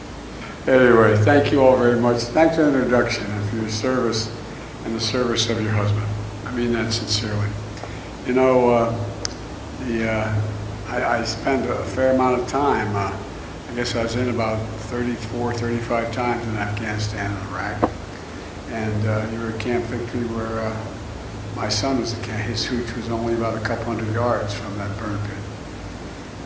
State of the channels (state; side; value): identical; both; correlation 1.00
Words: anyway, thank you all very much. Thanks for the introduction and for your service and the service of your husband. I mean that sincerely. You know, I spent a fair amount of time, I guess I was in about 34, 35 times in Afghanistan and Iraq. And you were at Camp Victory where my son was at camp. His hooch was only about a couple hundred yards from that burn pit.